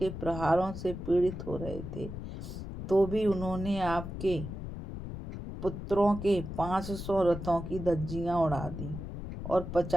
प्रहारों से पीड़ित हो रहे थे, तो भी उन्होंने आपके पुत्रों के 500 रथों की धज्जियां उड़ा दी और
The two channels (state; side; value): noise; left; rumble, 8 dB below the sound